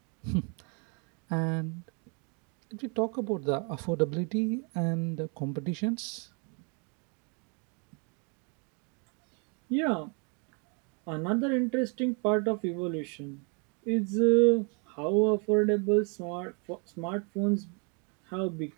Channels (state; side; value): quieter; left; 36.5 dB